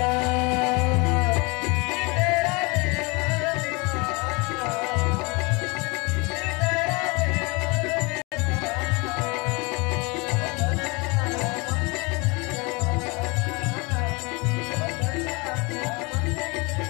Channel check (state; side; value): quieter; right; 27.8 dB